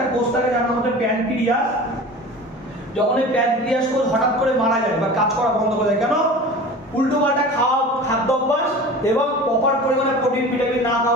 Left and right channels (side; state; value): both; normal; correlation 0.37